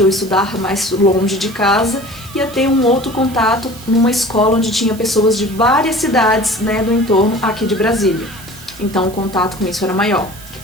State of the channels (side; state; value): right; noise; hiss, 19 dB below the sound